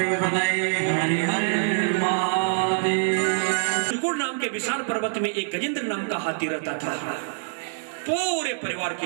पतये, हरि हर महादेव। त्रिकुट नाम के विशाल पर्वत में एक गजेंद्र नाम का हाथी रहता था, पूरे परिवार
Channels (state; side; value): silent; left; digital silence